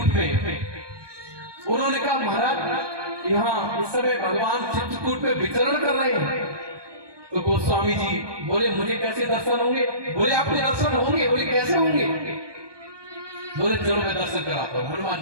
में उन्होंने कहा महाराज यहाँ इस समय भगवान चित्रकूट में विचरण कर रहे हैं। तो गोस्वामी जी बोले मुझे कैसे दर्शन होंगे? बोले आपके दर्शन होंगे। बोले कैसे होंगे? बोले चलो मैं दर्शन कराता हूं। हनुमान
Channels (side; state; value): left; late; 1.2 ms